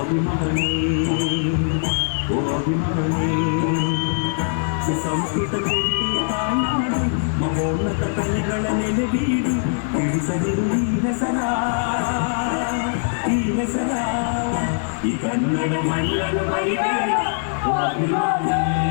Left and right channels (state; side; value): silent; right; digital silence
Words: ಓ ಅಭಿಮಾನಿ ಸುಸಂಸ್ಕೃತ ಕೀರ್ತಿ ತಾಯ್ನಾಡು ಮಹೋನ್ನತ ಕಲೆಗಳ ನೆಲೆ ಬೀಡು ತಿಳಿಸದಿರು ಈ ಹೆಸರ ಈ ಕನ್ನಡ ಮಣ್ಣನ್ನು ಮರಿಬೇಡ ಓ ಅಭಿಮಾನಿ